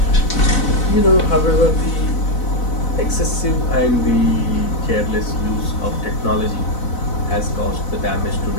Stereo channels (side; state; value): right; late; 4.0 ms